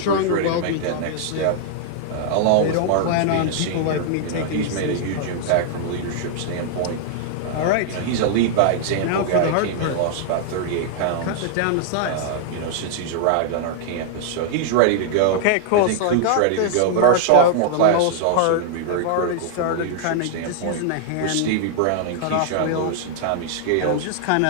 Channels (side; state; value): both; different; correlation -0.01